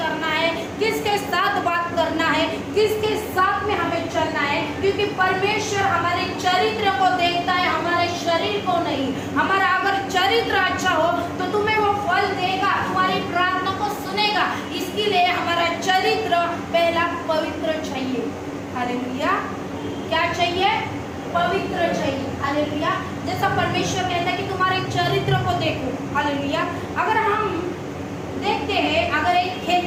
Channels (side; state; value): both; identical; correlation 1.00